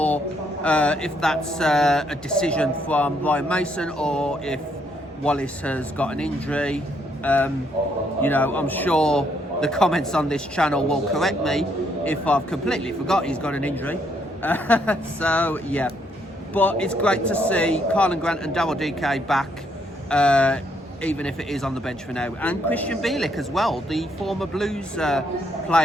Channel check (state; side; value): normal; both; correlation 0.72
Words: if that's a decision from Ryan Mason or if Wallace has got an injury. You know, I'm sure the comments on this channel will correct me if I've completely forgot he's got an injury. So yeah, but it's great to see Carlin Grant and Daryl DK back, even if it is on the bench for now, and Christian Bielik as well, the former Blues